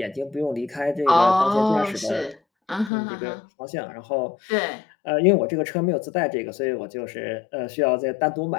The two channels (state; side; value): drops out; right; at 2.9 s